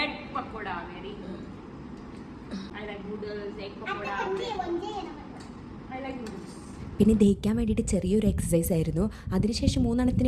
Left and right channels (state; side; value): identical; both; correlation 1.00